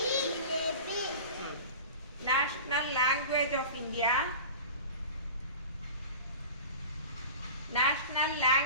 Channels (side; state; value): both; inverted; correlation -0.35